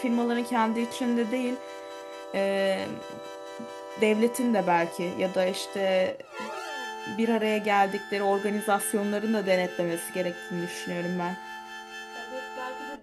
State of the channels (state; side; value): identical; both; correlation 1.00